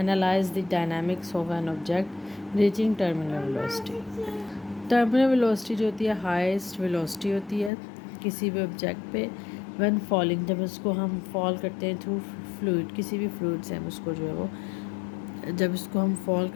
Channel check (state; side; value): drops out; right; at 7.7 s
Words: the dynamics of an object reaching terminal velocity. Terminal velocity जो होती है हाईएस्ट वेलोसिटी होती है किसी भी ऑब्जेक्ट पे व्हेन फॉलिंग, जब उसको हम फॉल करते हैं थ्रू फ्लूइड, किसी भी फ्लूइड से हम उसको जो है वो जब इसको हम फॉल